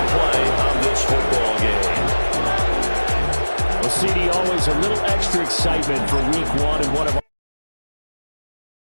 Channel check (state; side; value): inverted; both; correlation -1.00